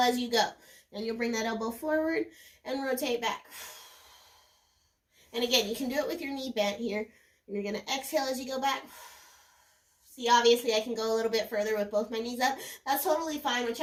you go. Then you'll bring that elbow forward and rotate back. And again, you can do it with your knee bent here. And you're going to exhale as you go back. See, obviously I can go a little bit further with both my knees up. That's totally fine.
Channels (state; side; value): identical; both; correlation 1.00